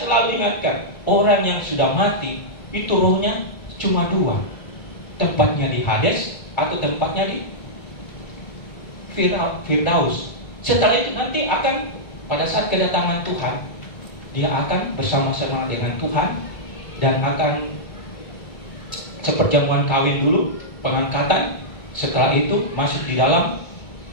selalu ingatkan, orang yang sudah mati itu rohnya cuma dua, tempatnya di Hades atau tempatnya di Firdaus. Setelah itu nanti akan pada saat kedatangan Tuhan, dia akan bersama-sama dengan Tuhan dan akan seperjamuan kawin dulu, pengangkatan. Setelah itu masuk di dalam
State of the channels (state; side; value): late; right; 1.3 ms